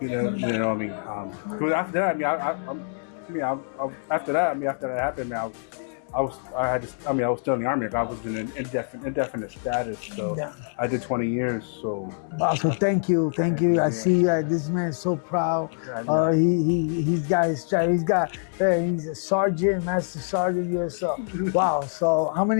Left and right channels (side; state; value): right; silent; 60 dB below the other